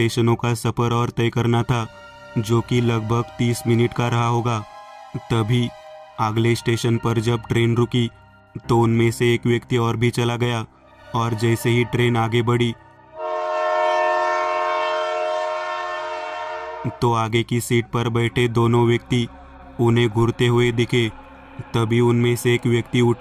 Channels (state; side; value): identical; both; correlation 1.00